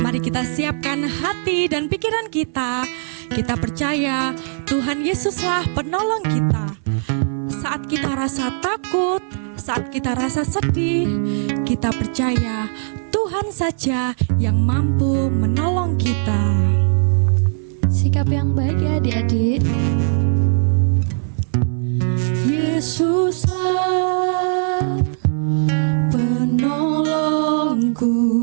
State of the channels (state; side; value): silent; left; 59 dB below the other